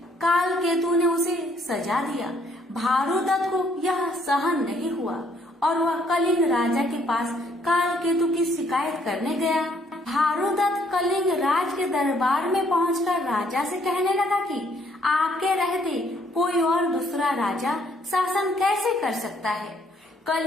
काल केतु ने उसे सजा दिया। भानुदत्त को यह सहन नहीं हुआ और वह कलिंग राजा के पास काल केतु की शिकायत करने गया। भानुदत्त कलिंग राज के दरबार में पहुंचकर राजा से कहने लगा कि आपके रहते कोई और दूसरा राजा शासन कैसे कर सकता है।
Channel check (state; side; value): normal; both; correlation 0.66